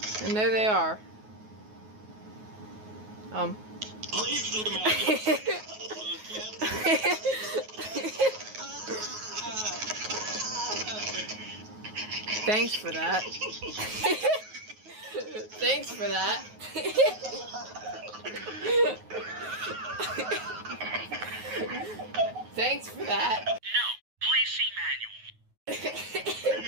And there they are. Thanks for that. Thanks for that. Thanks for that.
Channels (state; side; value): late; left; 9.4 ms